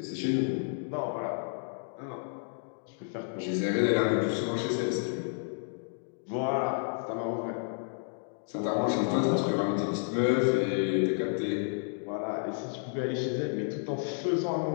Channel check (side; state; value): right; silent; digital silence